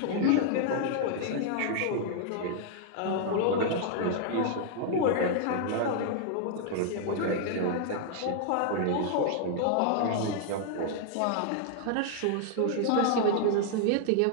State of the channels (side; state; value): both; different; correlation 0.00